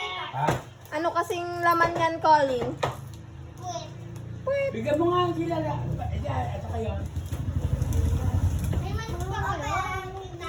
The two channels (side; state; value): both; identical; correlation 1.00